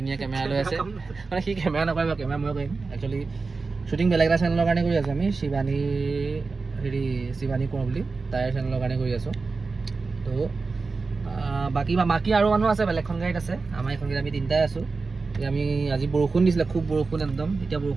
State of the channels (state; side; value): quieter; left; 4.2 dB